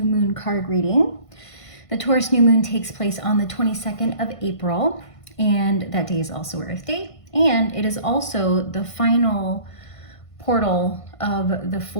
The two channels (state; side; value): late; right; 1.5 ms